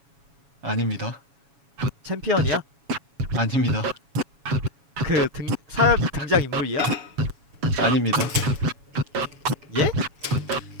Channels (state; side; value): late; left; 7.2 ms